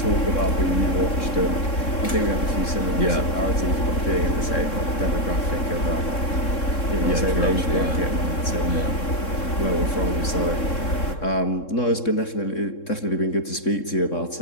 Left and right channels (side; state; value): right; late; 3.7 ms